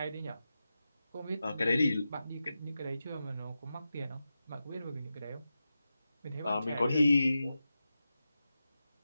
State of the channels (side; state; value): both; inverted; correlation -0.91